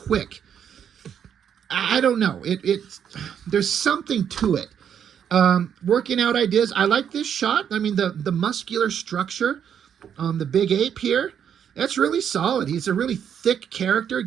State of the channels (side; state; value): left; quieter; 8.5 dB